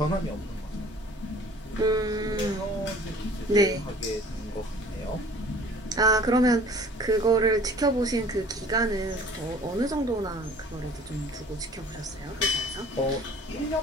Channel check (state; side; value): normal; both; correlation 0.49